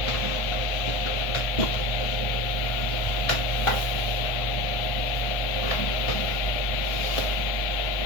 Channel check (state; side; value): late; right; 1.5 ms